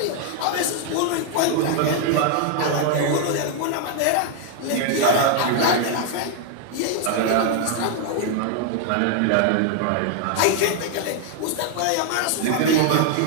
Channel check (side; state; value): both; different; correlation 0.00